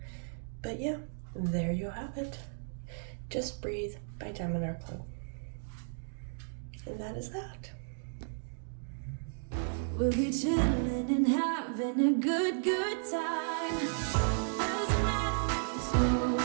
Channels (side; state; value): left; silent; digital silence